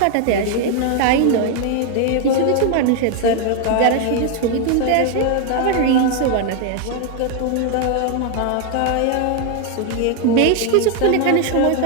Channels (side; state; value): both; different; correlation 0.01